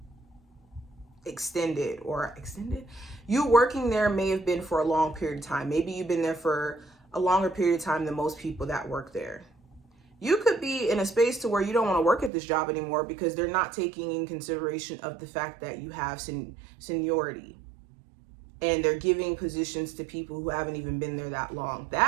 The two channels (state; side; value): drops out; left; at 12.3 s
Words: extended. You working there may have been for a long period of time. Maybe you've been there for a longer period of time than most people that work there. You could be in a space to where you don't want to work at this job anymore because they're not taking in consideration of the fact that you have seniority, and they're giving positions to people who haven't even been there that long.